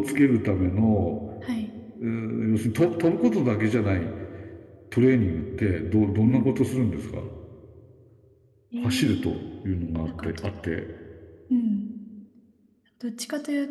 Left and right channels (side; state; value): both; identical; correlation 1.00